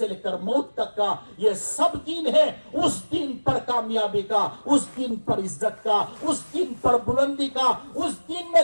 لے کر موت تک کا، یہ سب دین ہے۔ اس دین پر کامیابی کا، اس دین پر عزت کا، اس دین پر بلندی کا، اس دین میں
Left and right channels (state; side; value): inverted; both; correlation -1.00